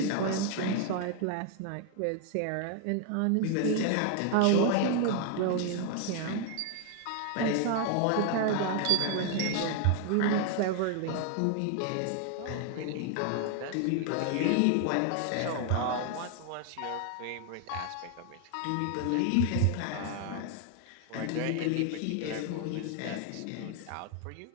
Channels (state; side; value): different; both; correlation 0.00